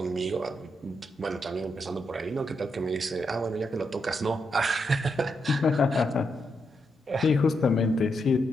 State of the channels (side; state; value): both; normal; correlation 0.82